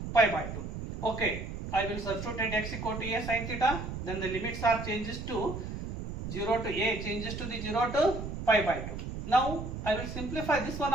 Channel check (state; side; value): noise; right; rumble, 7 dB below the sound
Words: pi by 2. Okay, I will substitute x equal to a sin theta. Then the limits are changes to 0 to a, changes to the 0 to pi by 2. Now, I will simplify this one